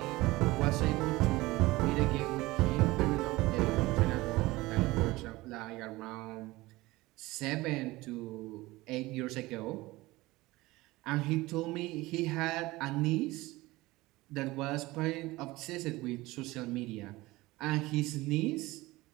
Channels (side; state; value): left; quieter; 19.9 dB